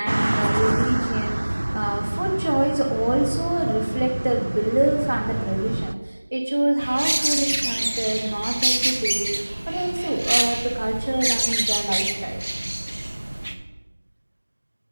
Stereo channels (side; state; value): both; inverted; correlation -1.00